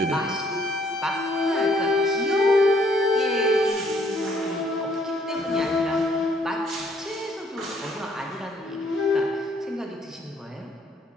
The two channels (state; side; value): normal; both; correlation 0.65